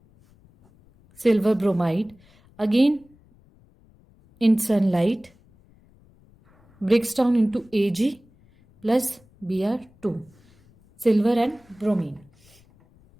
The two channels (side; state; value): left; noise; rumble, 30 dB below the sound